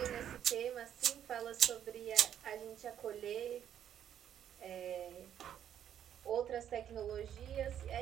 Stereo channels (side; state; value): left; quieter; 9.9 dB